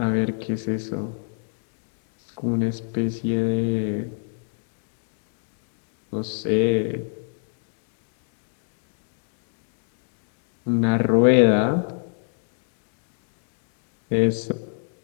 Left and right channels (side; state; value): right; silent; 56 dB below the other